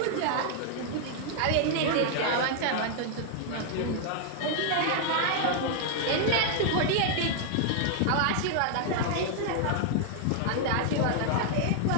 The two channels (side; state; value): both; different; correlation 0.00